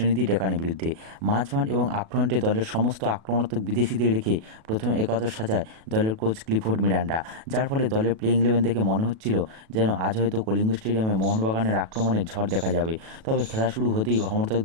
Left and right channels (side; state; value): left; late; 37 ms